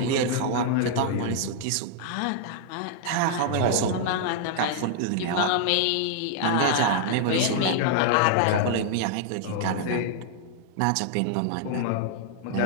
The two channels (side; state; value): both; different; correlation -0.01